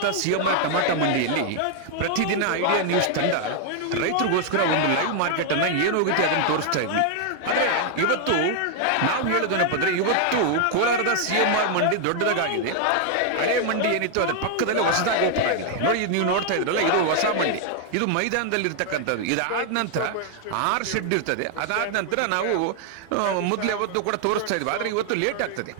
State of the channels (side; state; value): both; different; correlation 0.00